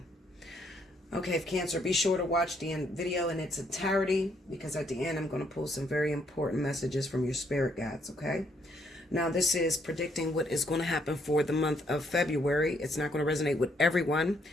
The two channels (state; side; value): normal; both; correlation 0.71